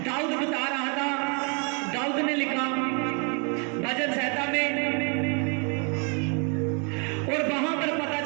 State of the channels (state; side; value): quieter; left; 36.4 dB